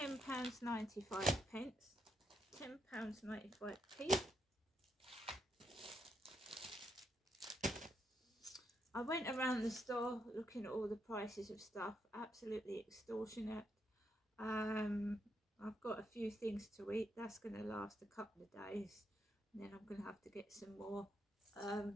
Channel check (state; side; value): normal; both; correlation 0.79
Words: £10.95p. I went around the store looking at all the prices of stuff, absolutely extortionate. I've got a few things to eat. That's going to last a couple of days, and then I'm going to have to get some more.